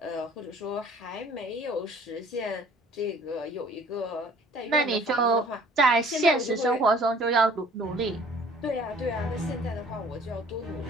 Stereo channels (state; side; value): normal; both; correlation 0.53